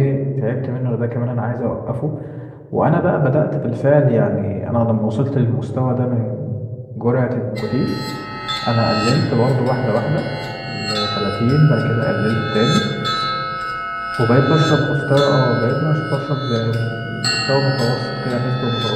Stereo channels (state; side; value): identical; both; correlation 1.00